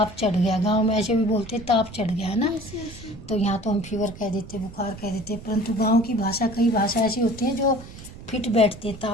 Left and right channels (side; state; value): right; noise; rumble, 15 dB below the sound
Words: चढ़ गया। गांव में ऐसे भी बोलते हैं ताप चढ़ गया, है ना? तो यहाँ तो हम फीवर कह देते, बुखार कह देते, परंतु गांव की भाषा, कई भाषा ऐसी होती हैं जो फिट बैठती है।